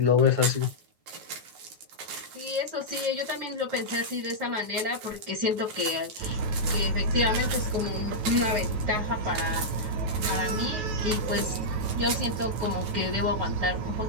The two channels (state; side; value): late; left; 9.3 ms